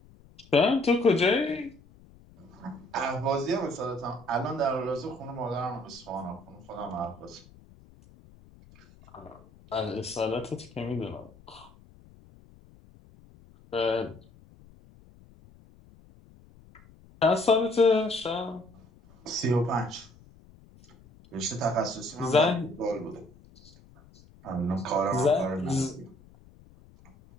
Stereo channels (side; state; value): left; noise; rumble, 25 dB below the sound